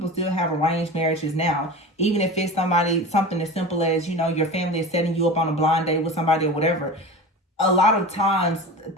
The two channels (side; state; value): both; normal; correlation 0.31